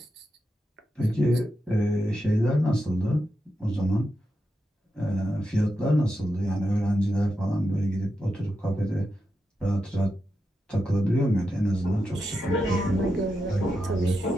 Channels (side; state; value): both; normal; correlation 0.88